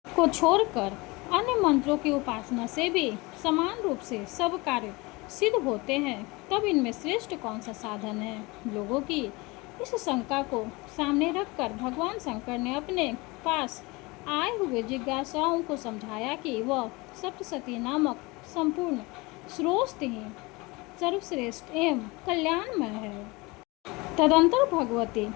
को छोड़कर अन्य मंत्रों की उपासना से भी समान रूप से सब कार्य सिद्ध होते हैं, तब इनमें श्रेष्ठ कौन सा साधन है। लोगों की इस शंका को सामने रखकर भगवान शंकर ने अपने पास आए हुए जिज्ञासाओं को समझाया कि वह सप्तशती नामक संपूर्ण स्रोत ही सर्वश्रेष्ठ एवं कल्याणमय है। तदंतर भगवती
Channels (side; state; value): right; quieter; 24.4 dB